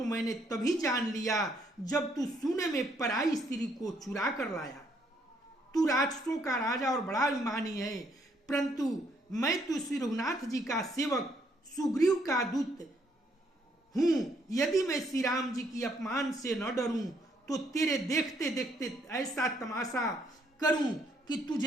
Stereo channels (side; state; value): both; normal; correlation 0.70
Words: मैंने तभी जान लिया जब तू सोने में पराई स्त्री को चुरा कर लाया। तू राक्षसों का राजा और बड़ा अभिमानी है, परंतु मैं तो श्री रघुनाथ जी का सेवक सुग्रीव का दूत हूं। यदि मैं श्री राम जी की अपमान से न डरूं तो तेरे देखते देखते ऐसा तमाशा करूं कि